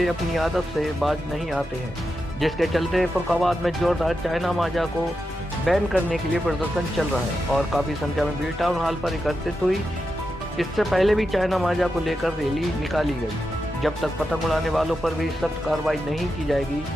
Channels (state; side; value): normal; both; correlation 0.88